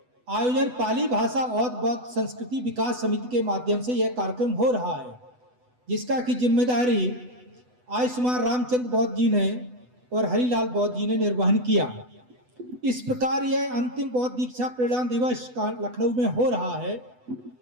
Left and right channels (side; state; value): left; late; 8.0 ms